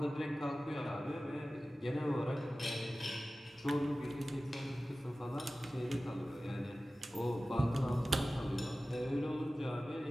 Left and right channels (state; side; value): normal; both; correlation 0.96